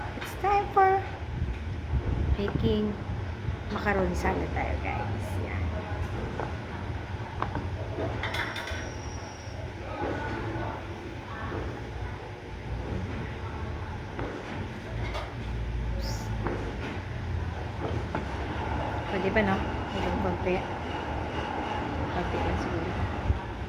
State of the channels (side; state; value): both; identical; correlation 1.00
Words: It's time for making macaroni salad tayo, guys. Yan. Pwede ba, no? Hanggang konti. Konti lang siguro.